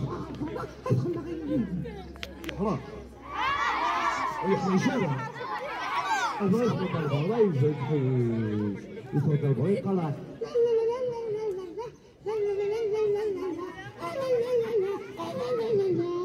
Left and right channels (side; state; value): both; identical; correlation 1.00